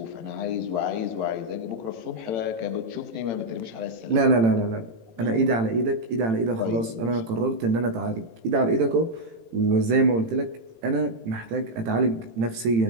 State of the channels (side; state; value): left; late; 18 ms